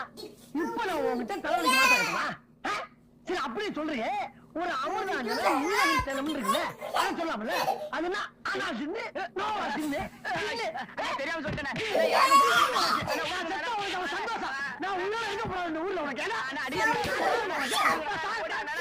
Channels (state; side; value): identical; both; correlation 1.00